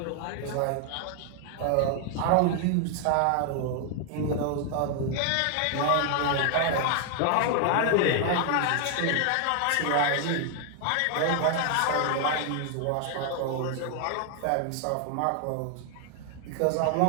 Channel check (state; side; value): different; both; correlation 0.00